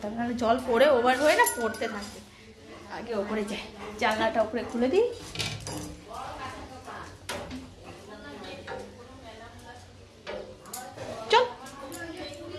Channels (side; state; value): both; identical; correlation 1.00